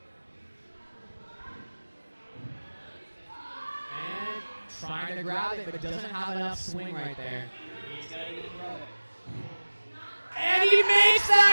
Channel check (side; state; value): both; inverted; correlation -1.00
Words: And trying to grab it, but doesn't have enough swing right there. He's got to throw it. And he makes